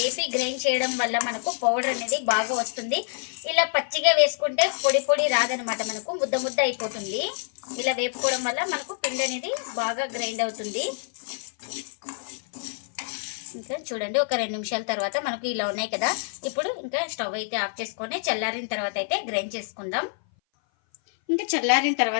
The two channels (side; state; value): right; silent; 58 dB below the other